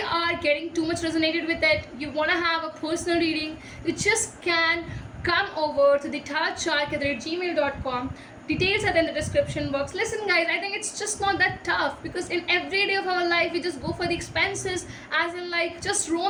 are getting too much resonated with it, you want to have a personal reading, you just can come over to the tarotchark@gmail.com. Details are in the description box. Listen, guys, I think it's just not that tough, because in every day of our life we just go for the expenses, as in like just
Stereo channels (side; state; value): both; identical; correlation 1.00